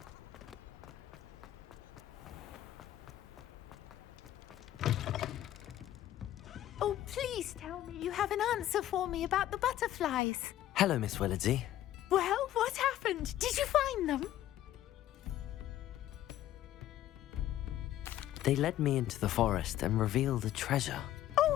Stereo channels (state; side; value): quieter; right; 13.0 dB